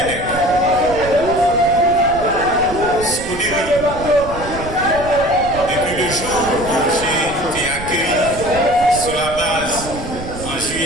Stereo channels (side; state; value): right; noise; rumble, 11 dB below the sound